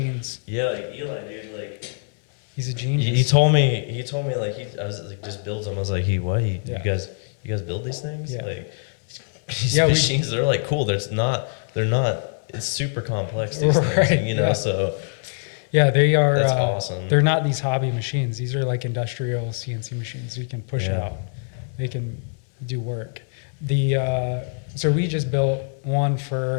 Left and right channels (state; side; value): silent; right; 63 dB below the other